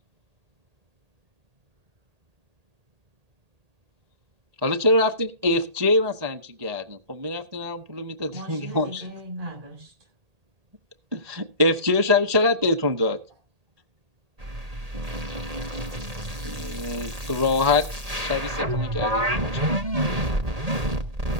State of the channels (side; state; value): left; late; 1.8 ms